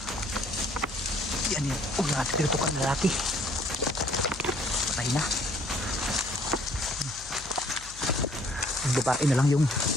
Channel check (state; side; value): noise; left; hum, 18 dB below the sound